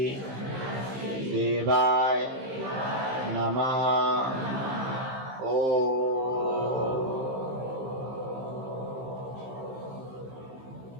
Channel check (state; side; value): late; left; 15 ms